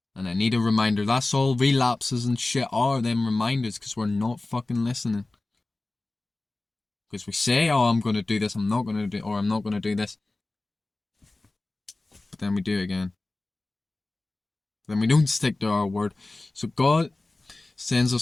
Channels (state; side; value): quieter; right; 3.0 dB